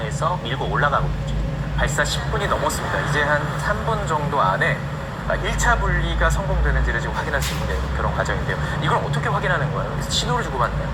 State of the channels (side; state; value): both; identical; correlation 1.00